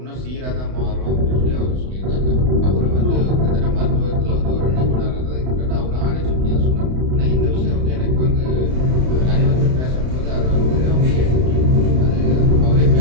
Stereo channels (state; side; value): late; left; 31 ms